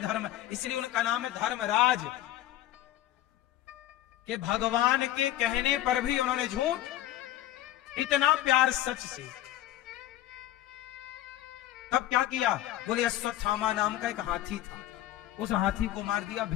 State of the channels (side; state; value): right; quieter; 13.8 dB